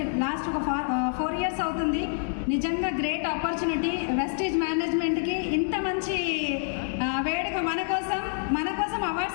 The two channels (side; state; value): right; silent; digital silence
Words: లాస్ట్ ఒక 4 years అవుతుంది. నిజంగా గ్రేట్ ఆపర్చునిటీ. వెస్టీజ్ మేనేజ్మెంట్కి ఇంత మంచి వేడుక మన కోసం